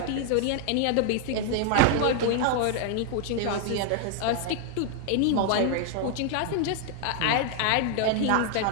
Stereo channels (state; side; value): different; both; correlation 0.00